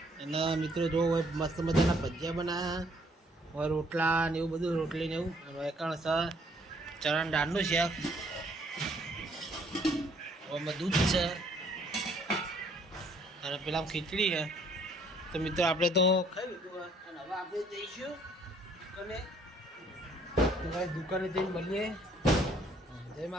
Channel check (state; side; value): normal; both; correlation 0.64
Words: અને મિત્રો જો મસ્ત મજાના ભજીયા બનાવ્યા હવે રોટલા ને એવું બધું, રોટલી ને એવું. અને એકણ સર ચણા દાળનું શાક, એમાં દૂધ છે અને પેલા ખીચડી છે. તો મિત્રો આપણે તો ખાઈ લીધું અને હવે આપણે જઈશું દુકાને. તો ભાઈ દુકાને જઈને મળીએ. જય